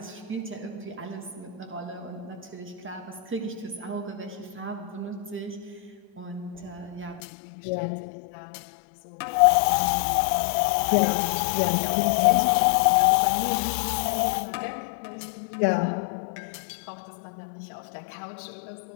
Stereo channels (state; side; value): drops out; right; at 7.2 s